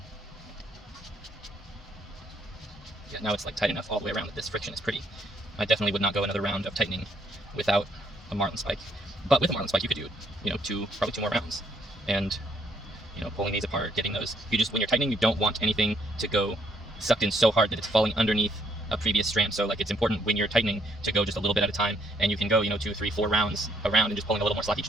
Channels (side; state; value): both; normal; correlation 0.70